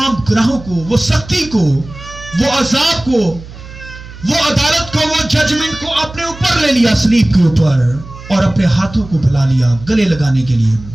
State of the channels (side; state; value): right; noise; hum, 16 dB below the sound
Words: گناہوں کو، وہ سختی کو، وہ عذاب کو، وہ عدالت کو، وہ ججمنٹ کو اپنے اوپر لے لیا صلیب کے اوپر، اور اپنے ہاتھوں کو پھیلا لیا گلے لگانے کے لیے۔